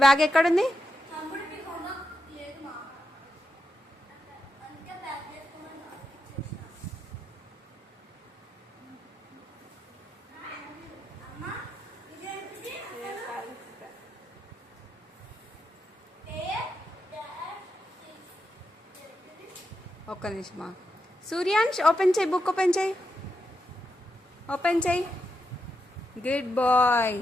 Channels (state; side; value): normal; both; correlation 0.85